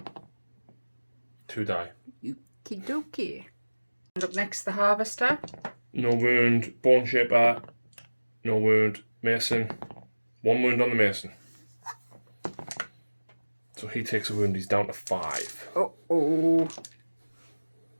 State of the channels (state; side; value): inverted; both; correlation -1.00